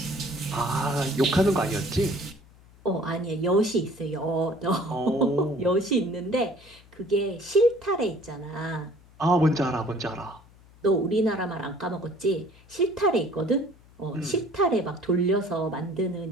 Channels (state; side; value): noise; left; hum, 25 dB below the sound